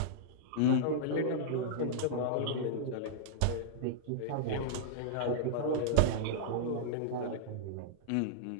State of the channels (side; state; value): both; different; correlation -0.02